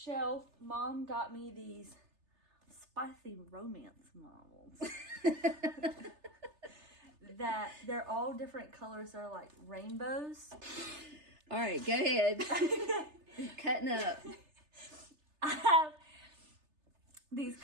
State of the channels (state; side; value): late; left; 3.3 ms